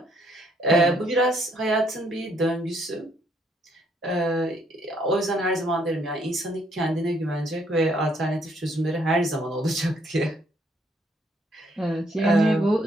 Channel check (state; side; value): normal; both; correlation 0.69